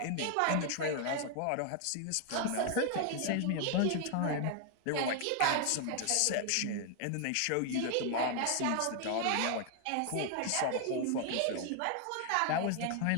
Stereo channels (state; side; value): different; both; correlation 0.00